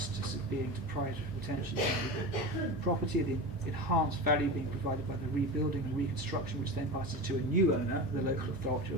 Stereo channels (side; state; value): both; normal; correlation 0.27